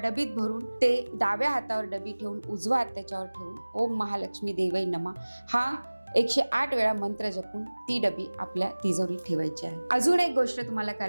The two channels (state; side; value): inverted; both; correlation -1.00